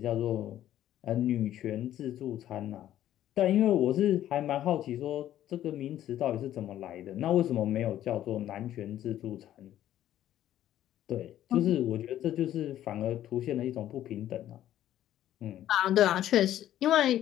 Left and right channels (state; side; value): quieter; right; 12.3 dB